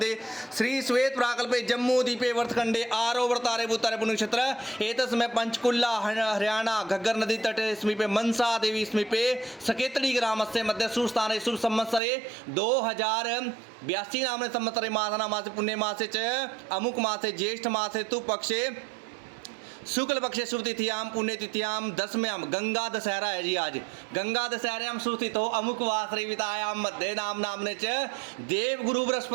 श्री श्वेत प्राकल्पे जम्मू द्वीपे वर्तखंडे आरोवर्तारे भूतारे पुण्यक्षेत्र एतस्मै पंचकुल्ला हरियाणा घग्गर नदी तटे समीपे मनसा देवी समीपे सकेतड़ी ग्रामस्य मध्य सुस्थाने शुभ संवत्सरे 2082 नामने संवत्सरे मासना मासे पुण्य मासे च अमुक मासे ज्येष्ठ मासे तु पक्षे शुक्ल पक्षे शुभ तिथियाम पुण्य तिथियाम दसम्याम गंगा दशहरा है जी। आज गंगा दशहरायाम सुस्थित हो अमुक वासरे वितायाम मध्य नाम नामने च देव गुरु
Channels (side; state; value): left; drops out; at 12.0 s